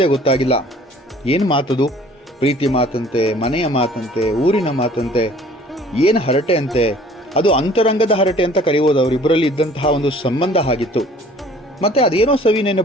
ಗೊತ್ತಾಗಿಲ್ಲ. ಏನು ಮಾತದು? ಪ್ರೀತಿ ಮಾತಂತೆ, ಮನೆಯ ಮಾತಂತೆ, ಊರಿನ ಮಾತಂತೆ, ಏನು ಹರಟೆ ಅಂತೆ. ಅದು ಅಂತರಂಗದ ಹರಟೆ ಅಂತ ಕರೆಯುವುದು. ಅವರಿಬ್ಬರಲ್ಲಿ ಇದ್ದಂತಹ ಒಂದು ಸಂಬಂಧ ಆಗಿತ್ತು. ಮತ್ತೆ ಅದೇನೋ ಸವಿ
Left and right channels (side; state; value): both; normal; correlation 0.52